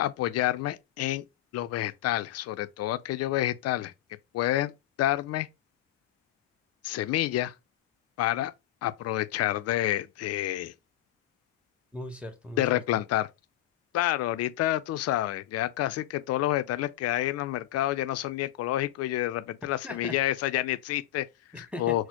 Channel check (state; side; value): quieter; right; 13.4 dB